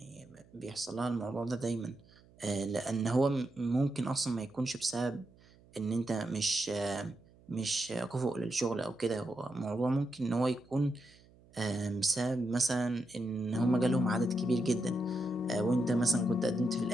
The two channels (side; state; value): right; noise; hum, 27 dB below the sound